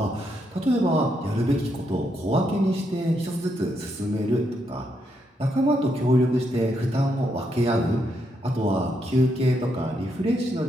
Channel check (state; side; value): normal; both; correlation 0.79